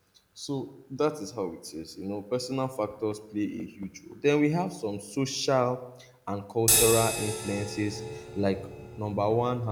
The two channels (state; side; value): identical; both; correlation 1.00